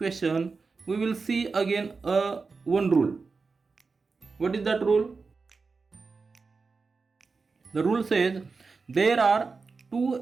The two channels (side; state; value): left; quieter; 4.5 dB